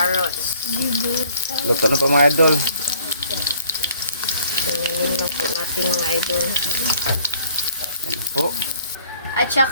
Luto na po mga idol. Ganyanin na po natin mga idol. Yan na po. At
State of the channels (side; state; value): both; inverted; correlation -0.58